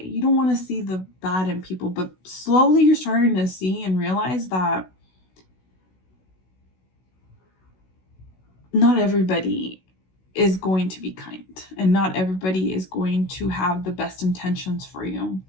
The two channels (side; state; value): right; late; 16 ms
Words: You don't want to see the bad in people, but slowly you're starting to see and realize that not everybody is going to be kind, and not everybody is going to have the best intentions for you.